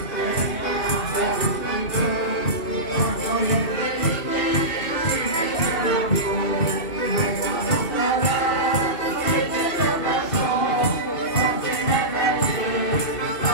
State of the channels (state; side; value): late; right; 2.7 ms